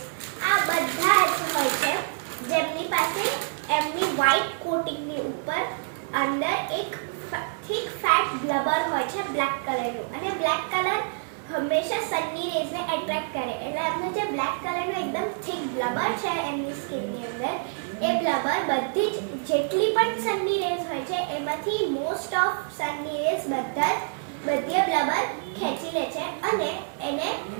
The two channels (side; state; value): left; silent; digital silence